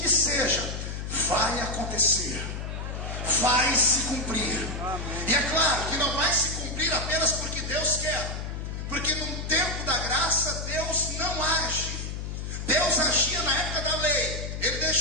seja, vai acontecer, vai se cumprir. E é claro que não vai se cumprir apenas porque Deus quer, porque num tempo da graça Deus não age. Deus agia na época da lei, Ele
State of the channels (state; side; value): noise; left; hum, 5 dB below the sound